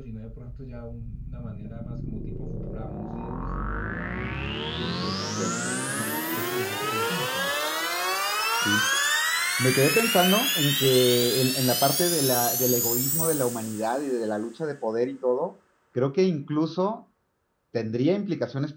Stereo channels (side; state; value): both; identical; correlation 1.00